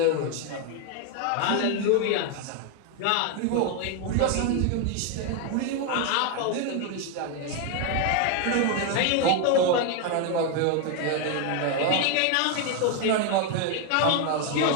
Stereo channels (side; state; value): both; different; correlation 0.01